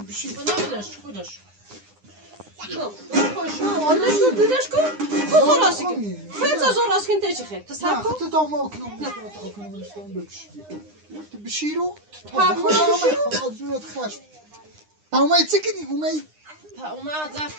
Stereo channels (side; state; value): left; late; 9.8 ms